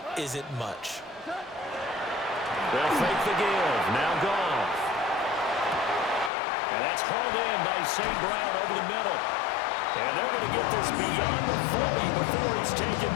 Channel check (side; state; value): right; drops out; at 6.3 s